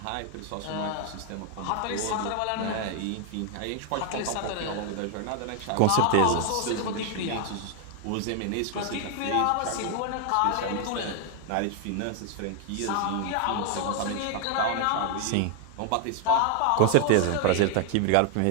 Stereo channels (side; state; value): both; different; correlation 0.00